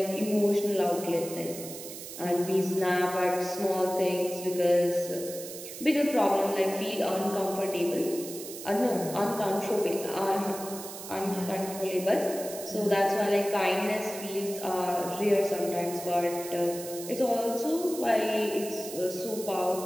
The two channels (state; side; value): noise; right; hiss, 11 dB below the sound